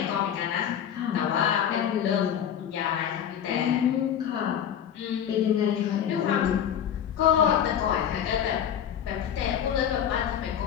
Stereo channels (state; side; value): quieter; right; 9.2 dB